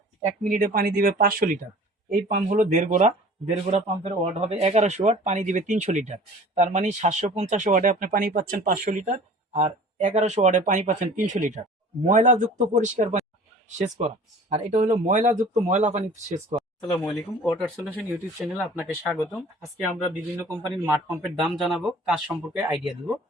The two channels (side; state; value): both; normal; correlation 0.46